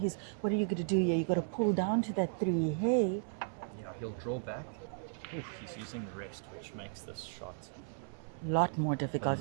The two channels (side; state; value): left; silent; 54 dB below the other